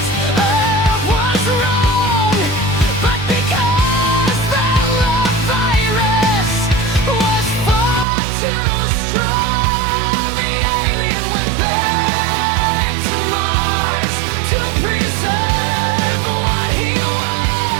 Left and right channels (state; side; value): drops out; left; at 8.1 s